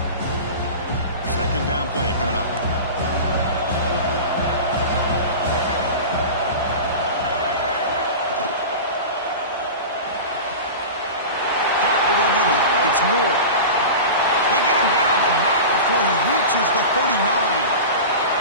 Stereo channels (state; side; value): inverted; both; correlation -0.30